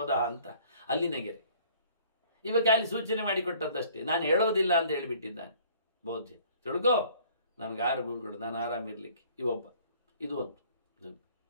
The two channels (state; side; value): inverted; both; correlation -0.55